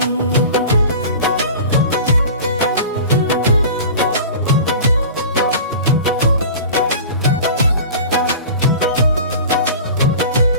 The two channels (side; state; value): both; inverted; correlation -0.37